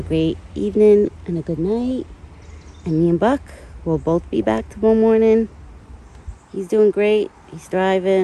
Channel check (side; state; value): both; identical; correlation 1.00